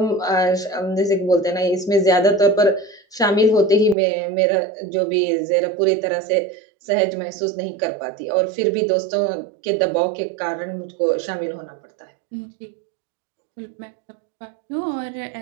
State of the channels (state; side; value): drops out; left; at 4.0 s